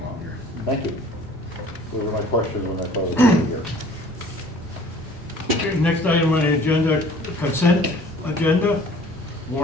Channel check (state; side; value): normal; both; correlation 0.51